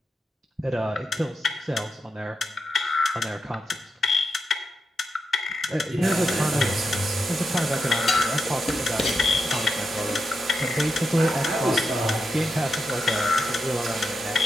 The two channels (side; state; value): both; normal; correlation 0.86